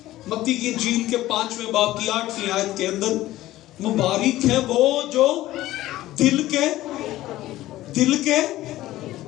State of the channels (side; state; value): right; quieter; 15.7 dB